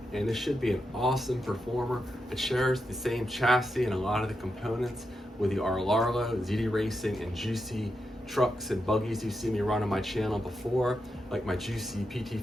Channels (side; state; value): both; normal; correlation 0.86